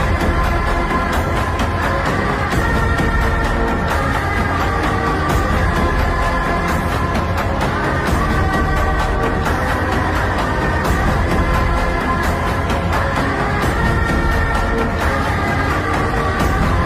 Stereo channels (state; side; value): identical; both; correlation 1.00